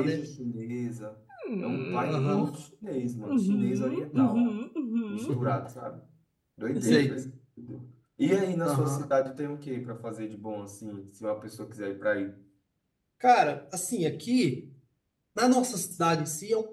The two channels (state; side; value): identical; both; correlation 1.00